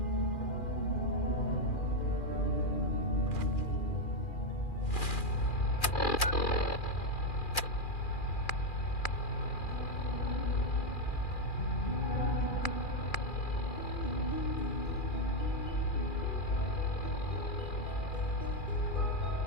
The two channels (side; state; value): right; late; 2.4 ms